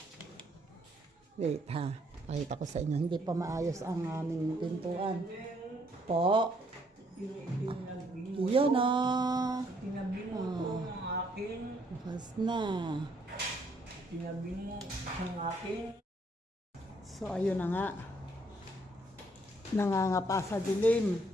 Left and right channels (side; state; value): both; normal; correlation 0.68